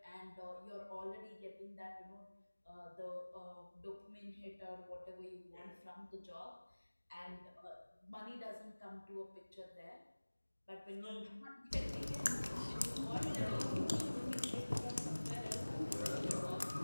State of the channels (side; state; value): both; inverted; correlation -1.00